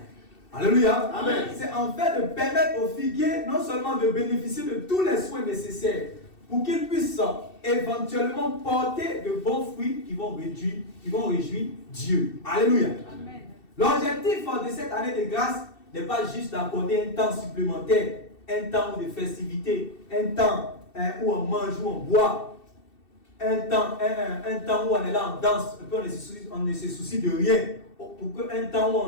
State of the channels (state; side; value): late; right; 2.7 ms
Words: Alléluia. Amen. C'est en fait de permettre aux figuiers non seulement de bénéficier de tous les soins nécessaires pour qu'ils puissent éventuellement porter de bons fruits qui vont réjouir Dieu. Alléluia. Amen. L'objectif de cette année de grâce n'est pas juste d'accorder un temps supplémentaire, un temps de festivité, un temps où on mange, où on boit, un temps où on est là, on danse, on ne se soucie de rien, pour qu'un temps où on